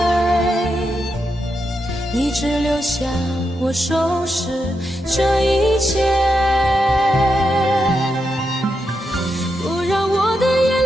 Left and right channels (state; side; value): normal; both; correlation 0.85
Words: 你只留下我收拾这一切，不让我的眼